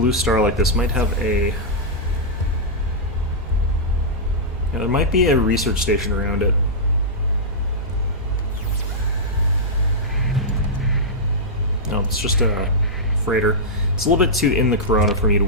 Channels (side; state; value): both; normal; correlation -0.10